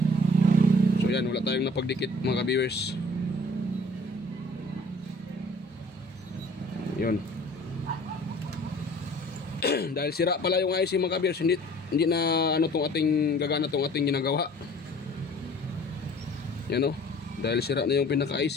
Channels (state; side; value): normal; both; correlation 0.51